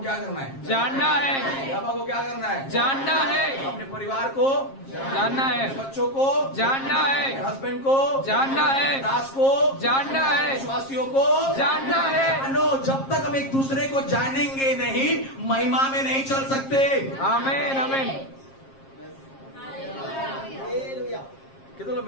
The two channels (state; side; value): late; right; 7.5 ms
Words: क्या करना है? जानना है, यहोवा को क्या करना है? जानना है, अपने परिवार को जानना है, बच्चों को जानना है, हस्बैंड को जानना है, दास को जानना है, विश्वासियों को जानना है। जानो। जब तक हम एक दूसरे को जानेंगे नहीं, महिमा में नहीं चल सकते। आमीन आमीन। कितने लोग